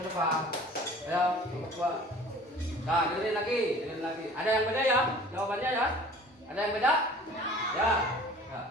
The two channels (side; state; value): both; normal; correlation 0.47